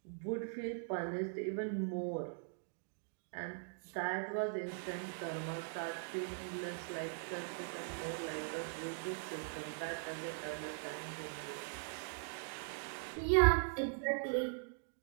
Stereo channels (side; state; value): left; silent; digital silence